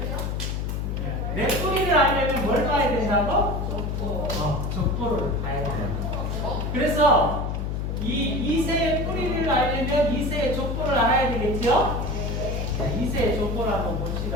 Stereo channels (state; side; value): noise; left; hum, 2 dB below the sound